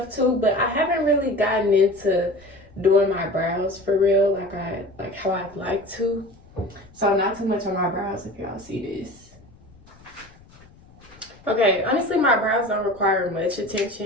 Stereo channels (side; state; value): left; noise; rumble, 25 dB below the sound